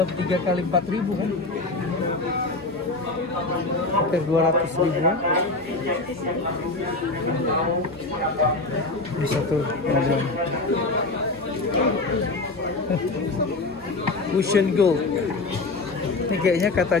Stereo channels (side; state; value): right; quieter; 3.3 dB